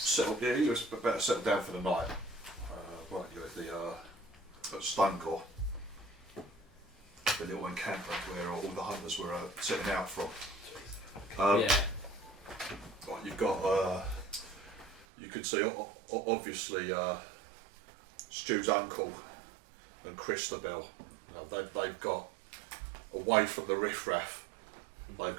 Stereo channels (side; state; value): left; drops out; at 15.1 s